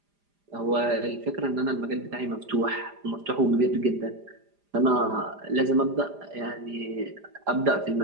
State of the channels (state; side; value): late; left; 4.9 ms